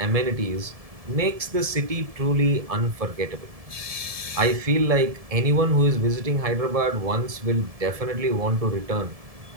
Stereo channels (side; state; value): left; late; 1.7 ms